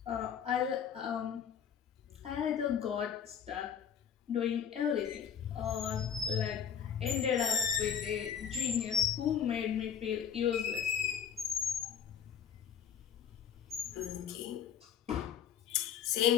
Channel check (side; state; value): right; quieter; 8.2 dB